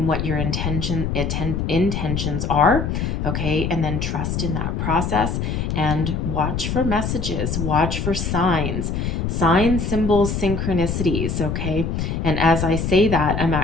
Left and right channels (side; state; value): left; noise; rumble, 1 dB below the sound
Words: what your intentions are. Okay, and then trust in that process and watch for messages, watch for signs, symbols, synchronicities. Okay, and as I say that, I'm